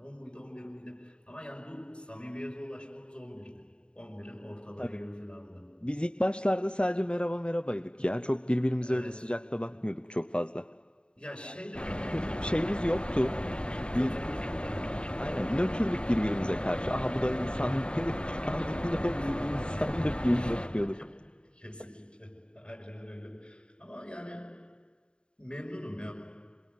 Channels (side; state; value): right; late; 0.052 ms